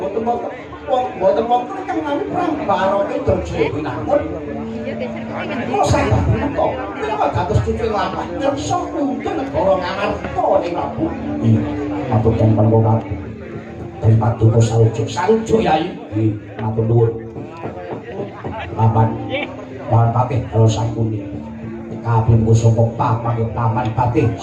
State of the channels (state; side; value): identical; both; correlation 1.00